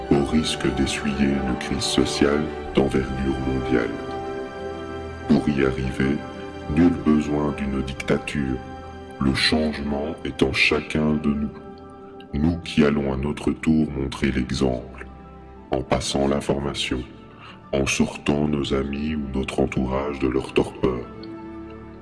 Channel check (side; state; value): both; identical; correlation 1.00